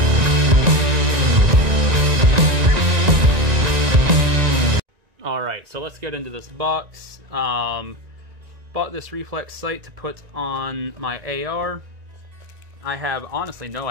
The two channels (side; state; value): left; late; 1.9 ms